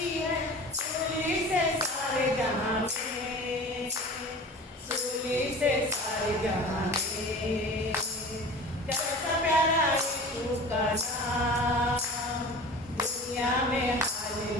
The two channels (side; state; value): both; normal; correlation 0.38